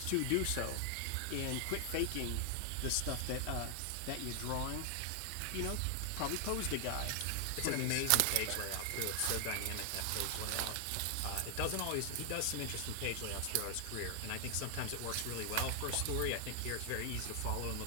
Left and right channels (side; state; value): both; different; correlation 0.00